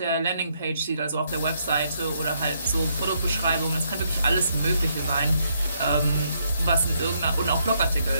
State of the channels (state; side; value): inverted; both; correlation -0.74